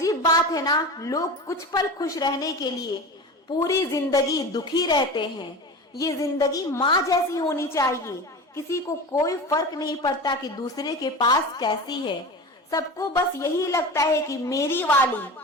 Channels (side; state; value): both; normal; correlation 0.30